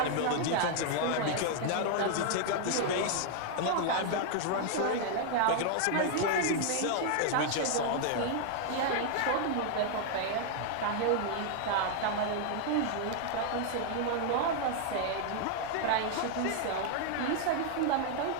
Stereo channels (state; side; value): different; both; correlation 0.00